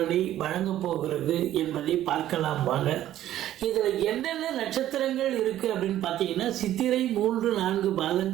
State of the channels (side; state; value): left; quieter; 12.8 dB